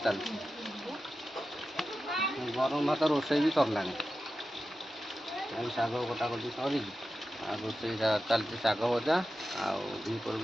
चलती गरम भात रोषे भी सरला शाग कटाकटी सर रोषे चलती शाग भजा आपर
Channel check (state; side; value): normal; both; correlation 0.92